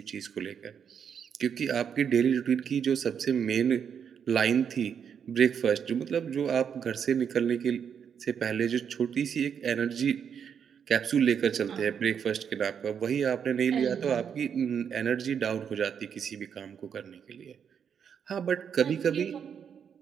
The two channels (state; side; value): quieter; left; 7.6 dB